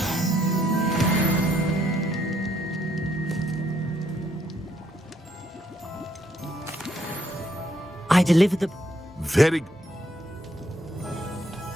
I delivered the... Very...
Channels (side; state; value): both; normal; correlation 0.72